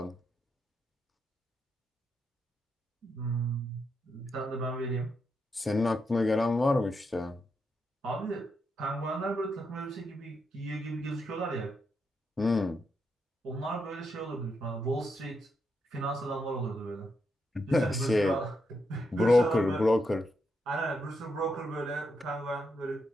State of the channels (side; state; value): both; normal; correlation 0.82